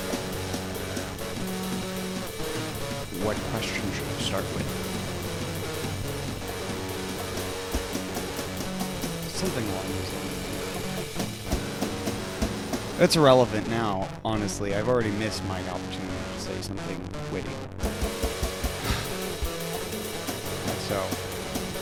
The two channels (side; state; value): both; identical; correlation 1.00